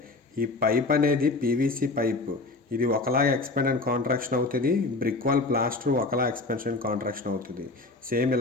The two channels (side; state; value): right; quieter; 3.4 dB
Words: ఈ పైప్ అనేది పీవీసీ పైప్, ఇది ఒకలాగా ఎక్స్పాండ్ అండ్ కాంట్రాక్షన్ అవుతుంది. బ్రిక్ వాల్ ప్లాస్టర్ ఒకలా ఎక్స్పాన్షన్ కాంట్రాక్షన్ అవుతుంది. సేమ్